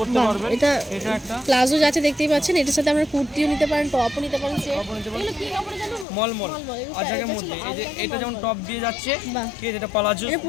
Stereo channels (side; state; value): right; drops out; at 6.1 s